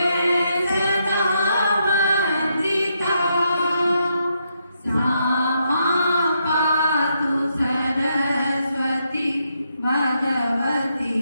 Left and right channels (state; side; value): inverted; both; correlation -0.79